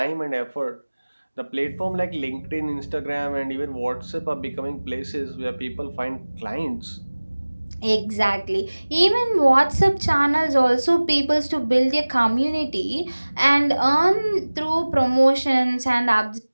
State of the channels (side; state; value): both; inverted; correlation -1.00